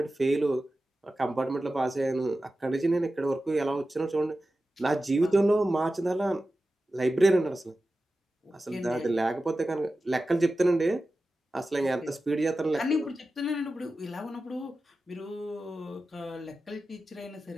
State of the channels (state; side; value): normal; both; correlation 0.94